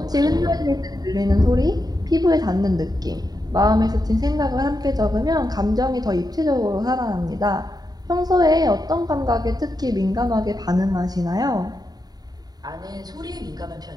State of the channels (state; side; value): late; left; 0.19 ms